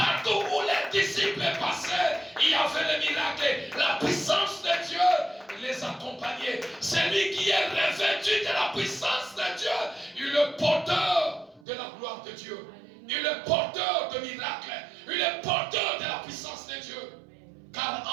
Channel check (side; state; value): left; drops out; at 11.7 s